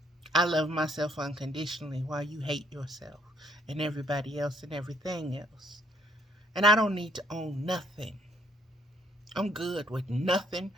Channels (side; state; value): both; normal; correlation 0.66